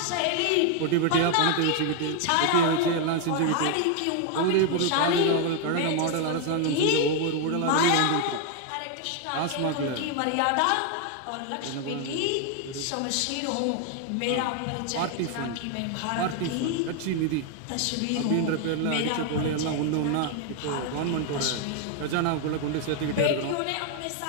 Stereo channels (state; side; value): different; both; correlation 0.01